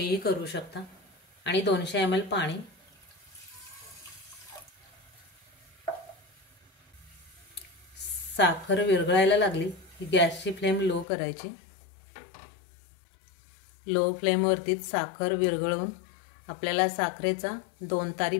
करू शकता। आणि 200 ml पाणी। साखर विरघळायला लागली की गॅसची फ्लेम लो करायची। लो फ्लेम वरतीच साखर विरघळून आपल्याला साखरेचा 2 तारी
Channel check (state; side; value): drops out; right; at 11.1 s